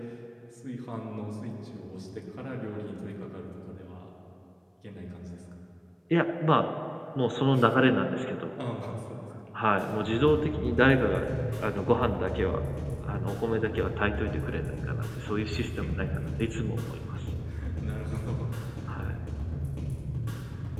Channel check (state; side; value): identical; both; correlation 1.00